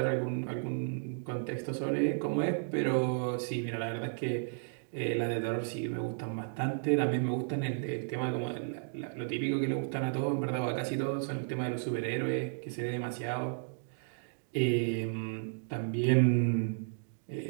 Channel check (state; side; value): silent; left; digital silence